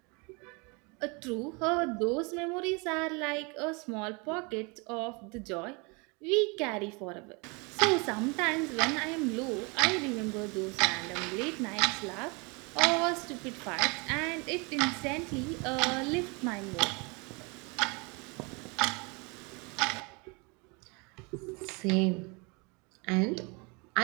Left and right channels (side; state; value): left; quieter; 29.8 dB